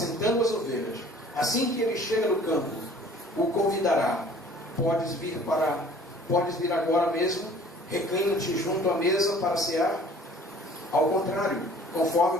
as ovelhas, assim que ele chega no campo, o convidará: podes vir agora mesmo, reclina-te junto à mesa para cear? Ao contrário, conforme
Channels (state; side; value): normal; both; correlation 0.51